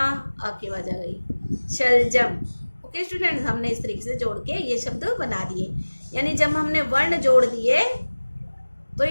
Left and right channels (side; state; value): both; inverted; correlation -1.00